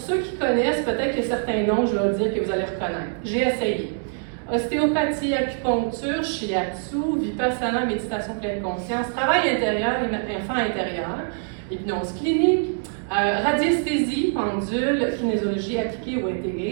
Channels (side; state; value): left; silent; digital silence